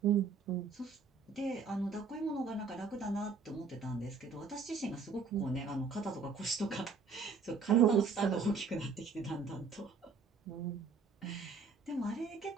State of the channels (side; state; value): left; quieter; 4.9 dB